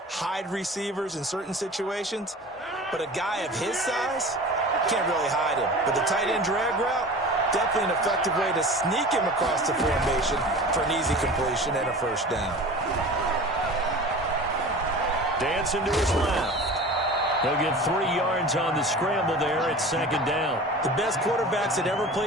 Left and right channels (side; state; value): both; normal; correlation 0.37